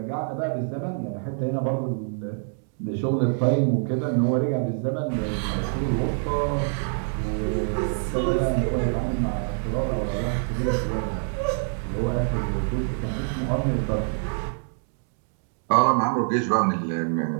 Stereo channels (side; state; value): left; silent; 61 dB below the other